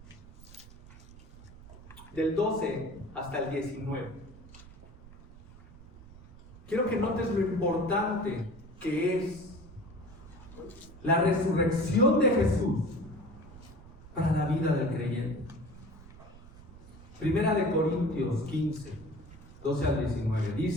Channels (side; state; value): right; noise; rumble, 19 dB below the sound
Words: del 12 hasta el 19. Quiero que notes lo importante que es la resurrección de Jesús para la vida del creyente. 1 Corintios 15, 12 al 19,